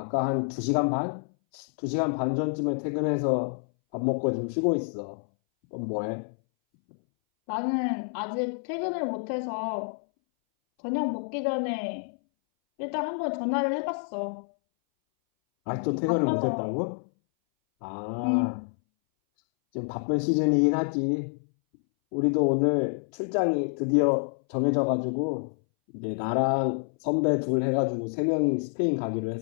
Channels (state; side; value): silent; right; 60 dB below the other